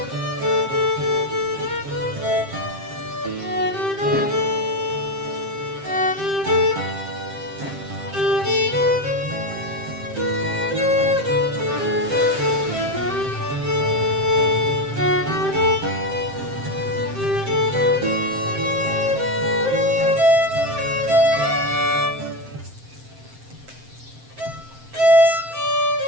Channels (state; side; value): late; left; 7.6 ms